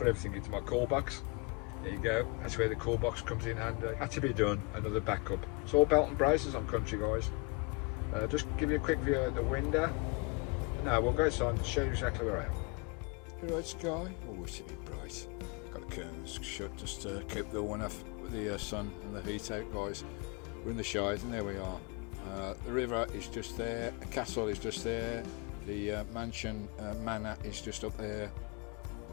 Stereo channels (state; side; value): quieter; right; 29.2 dB